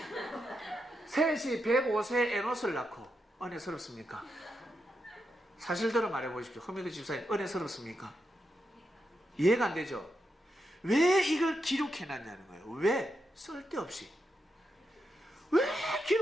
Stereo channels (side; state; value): both; normal; correlation 0.85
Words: 셋이 105세에 에노스를 낳고 은혜스럽습니까? 사실대로 말해보십시오. 허메드 집사님, 은혜스럽습니까? 이해가 안 되죠? 왜 이걸 기록해놨냐는 거예요. 왜? 쓸데없이. 왜